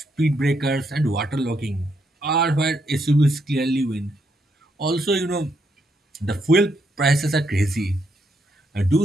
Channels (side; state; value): both; normal; correlation 0.77